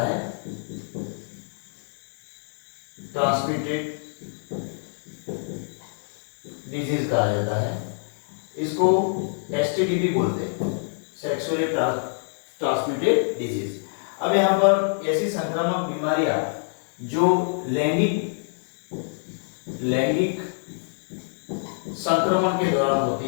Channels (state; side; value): silent; right; digital silence